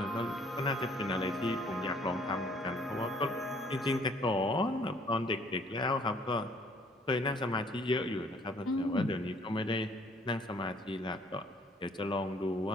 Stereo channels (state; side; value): normal; both; correlation 0.60